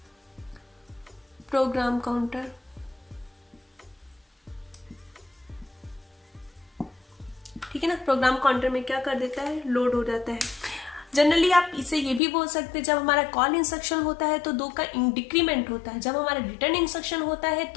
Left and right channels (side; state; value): right; drops out; at 12.2 s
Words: program counter। ठीक है ना। प्रोग्राम काउंटर में क्या कर देता है, लोड हो जाता है। जनरली आप इसे ये भी बोल सकते हैं, जब हमारा कॉल इंस्ट्रक्शन होता है तो 2 का डिक्रीमेंट होता है, जब हमारा रिटर्न इंस्ट्रक्शन होता है